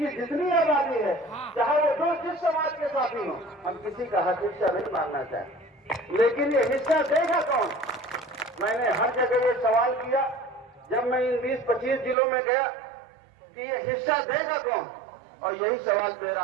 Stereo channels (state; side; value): drops out; left; at 12.2 s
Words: जितनी आबादी है, चाहे वो जो जिस समाज के साथ ही हो, हम किसी का हक हिस्सा नहीं मांगना चाहते, लेकिन ये हिस्सा देगा कौन? मैंने हर जगह ये सवाल किया जब मैं इन 20-25 जिलों में गया कि ये हिस्सा देगा कौन, और यही सवाल मेरा